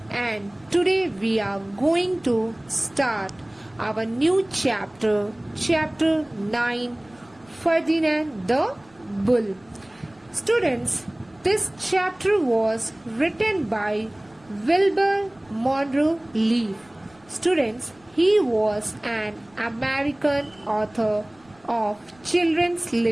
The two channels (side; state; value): right; noise; rumble, 30 dB below the sound